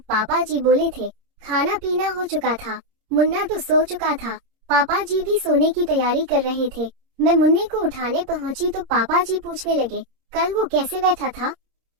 पापा जी बोले थे। खाना पीना हो चुका था, मुन्ना तो सो चुका था, पापा जी भी सोने की तैयारी कर रहे थे। मैं मुन्ने को उठाने पहुंची तो पापा जी पूछने लगे, कल वो कैसे बैठा था,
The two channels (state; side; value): late; left; 26 ms